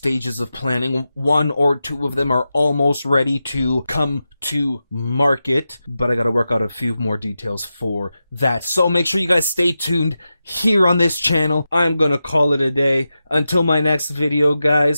of planning. 1 or 2 of them are almost ready to come to market, but I gotta work out a few more details for that. So make sure you guys stay tuned here on this channel. I'm gonna call it a day. Until my next video,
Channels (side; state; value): both; inverted; correlation -0.91